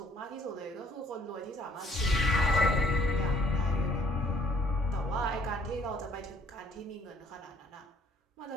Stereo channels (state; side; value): normal; both; correlation 0.61